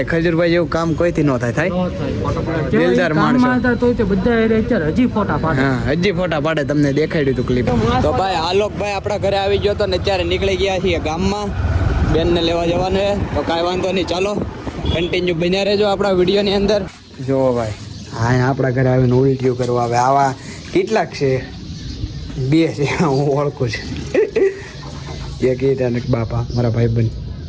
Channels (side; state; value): both; identical; correlation 1.00